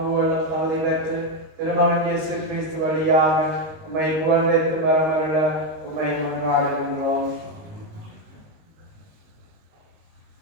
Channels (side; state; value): left; late; 19 ms